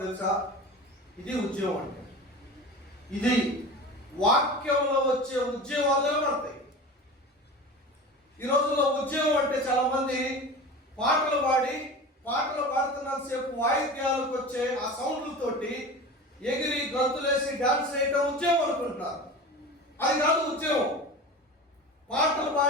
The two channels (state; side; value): normal; both; correlation 0.33